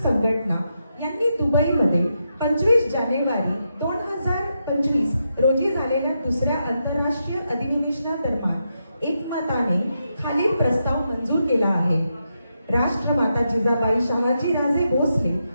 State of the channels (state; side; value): inverted; both; correlation -0.84